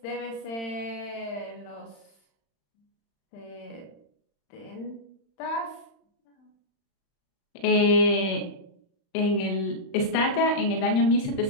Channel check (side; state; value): right; late; 35 ms